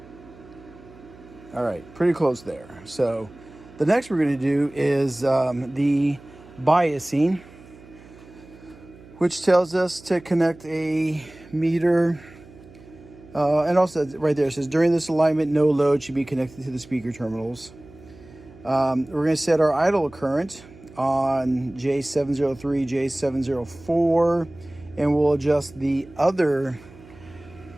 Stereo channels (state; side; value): noise; right; hum, 22 dB below the sound